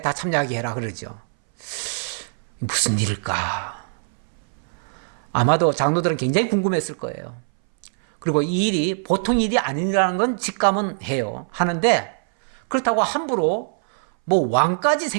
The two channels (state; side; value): silent; left; 61 dB below the other